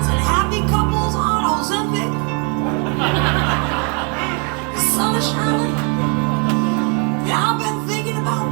and happy couples on Ozempic. The sun is shining, and I've been thinking about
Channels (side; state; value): left; quieter; 36.4 dB